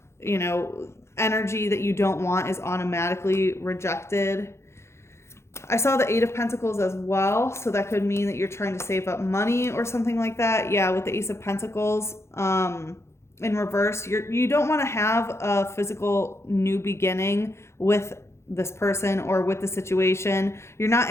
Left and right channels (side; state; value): right; late; 0.13 ms